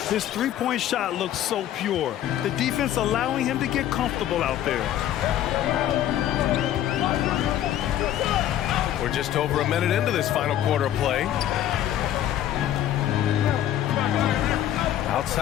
His three-point shot looks so pure. The defense allowing him to get comfortable out there. We're just over a minute into this final quarter of play.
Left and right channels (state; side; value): quieter; right; 11.8 dB